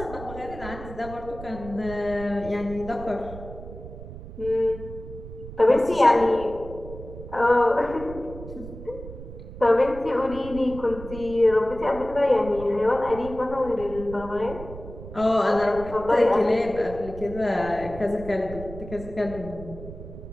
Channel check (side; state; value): right; noise; rumble, 13 dB below the sound